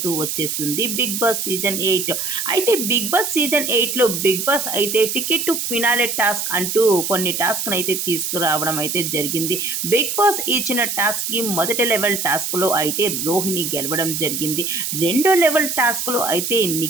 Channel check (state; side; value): noise; right; hiss, 2 dB below the sound